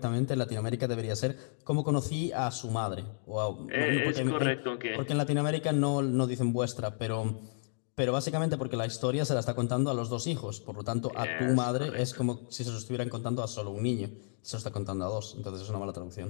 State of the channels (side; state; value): right; silent; digital silence